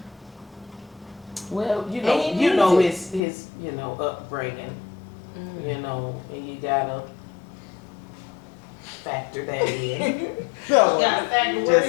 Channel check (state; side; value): drops out; right; at 3.2 s